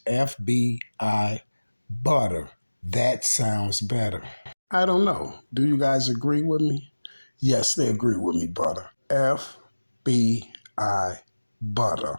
FBI Butter. That sounds better. I don't know. Do you guys agree with me? Yes, they agree with me, Butter. FBI Butter.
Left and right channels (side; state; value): both; inverted; correlation -1.00